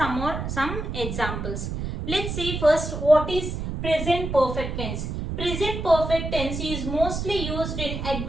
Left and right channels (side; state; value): right; noise; rumble, 4 dB below the sound